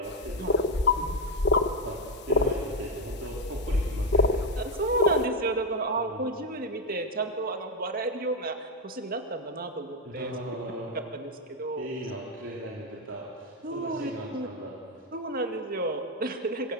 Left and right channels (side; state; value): both; normal; correlation 0.07